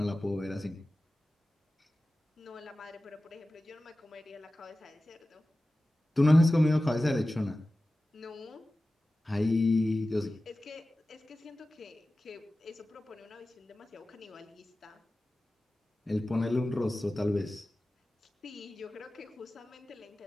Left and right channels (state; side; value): normal; both; correlation 0.96